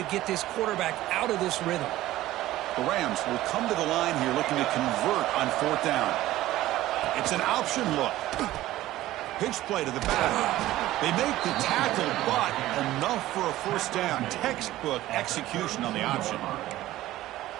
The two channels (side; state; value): left; quieter; 15.5 dB